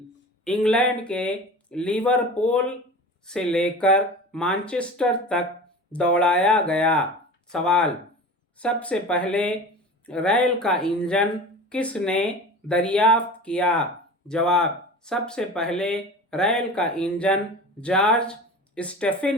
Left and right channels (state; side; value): normal; both; correlation 0.35